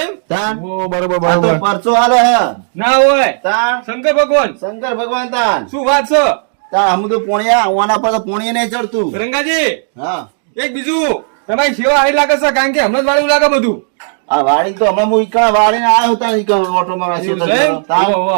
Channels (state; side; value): silent; left; digital silence